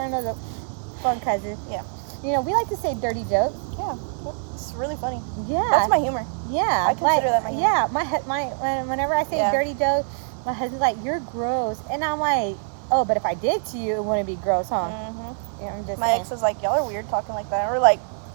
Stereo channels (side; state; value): left; silent; 58 dB below the other